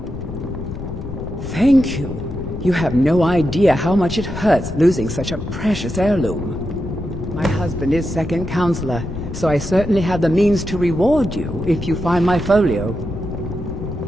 Thank you. You have no idea how much it hurts losing such a precious heirloom. My husband is second counselor, so I certainly have the means to reward you if you find my folio.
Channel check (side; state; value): left; noise; rumble, 9 dB below the sound